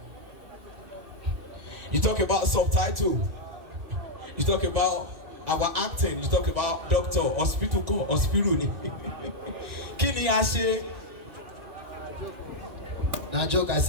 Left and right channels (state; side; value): late; left; 2.3 ms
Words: You talk about subtitle, you talk about our acting, you talk about doctor, hospital call, hospital ni. Kí ni a ṣe? Na joke, I